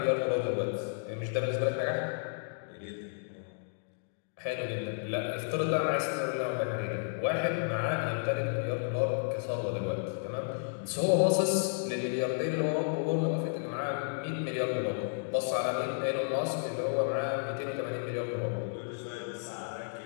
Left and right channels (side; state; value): right; silent; digital silence